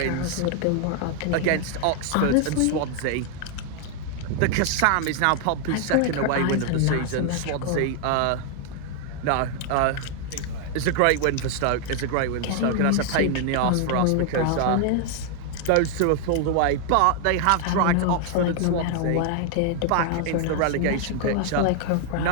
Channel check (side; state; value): both; different; correlation 0.00